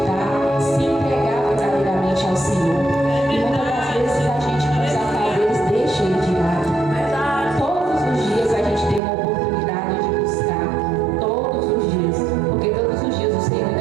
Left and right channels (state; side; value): drops out; left; at 9.0 s